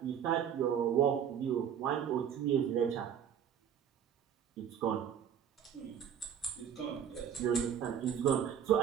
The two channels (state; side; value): quieter; left; 8.7 dB